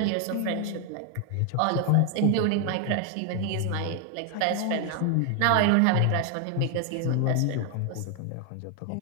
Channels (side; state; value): both; different; correlation 0.00